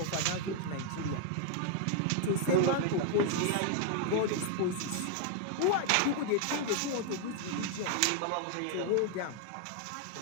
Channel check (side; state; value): both; different; correlation 0.00